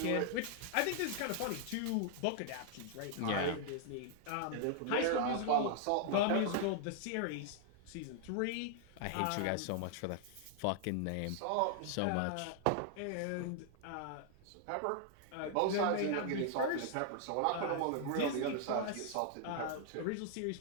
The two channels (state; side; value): different; both; correlation -0.01